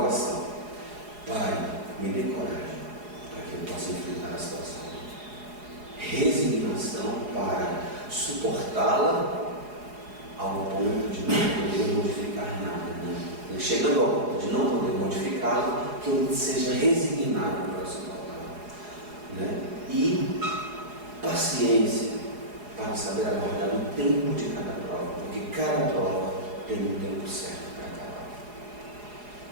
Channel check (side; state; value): left; late; 4.8 ms